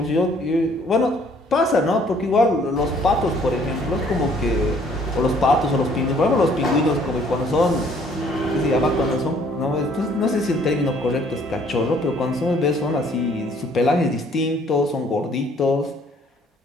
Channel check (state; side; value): normal; both; correlation 0.60